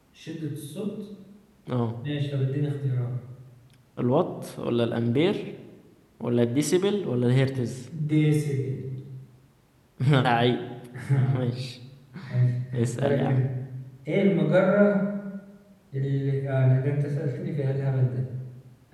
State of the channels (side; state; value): both; identical; correlation 1.00